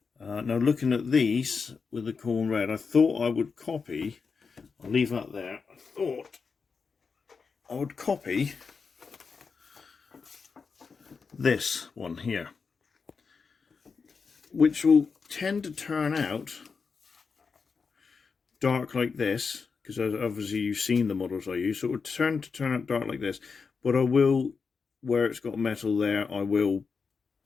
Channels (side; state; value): right; quieter; 5.2 dB